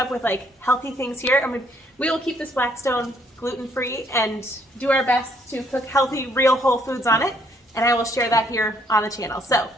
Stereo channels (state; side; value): normal; both; correlation 0.67